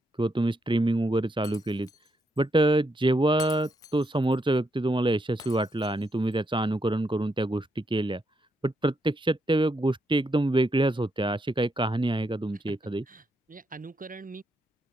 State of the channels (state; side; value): normal; both; correlation 0.79